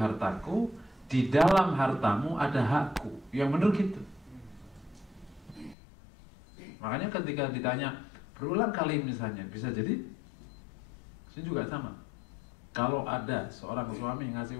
di dalam hartamu ada hakku. Yang benar gitu. Makanya ketika ditanya berulang kali misalnya, bisa jadi ini juga sama. Kalau ada seorang suami ngasih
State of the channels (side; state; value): right; drops out; at 5.8 s